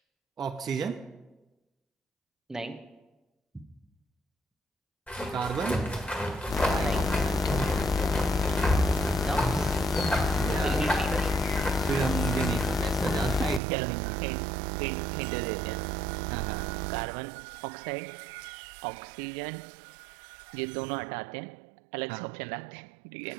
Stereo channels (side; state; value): left; drops out; at 13.6 s